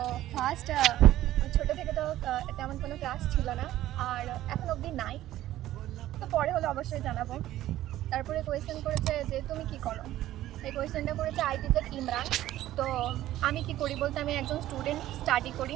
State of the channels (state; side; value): quieter; left; 14.1 dB